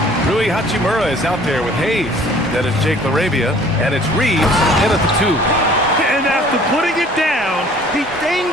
Rui Hachimura is out there with Hayes. Then it's Jake LaRavia, and it's Reeves in at the 2. And after putting it down, he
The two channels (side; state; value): both; normal; correlation 0.53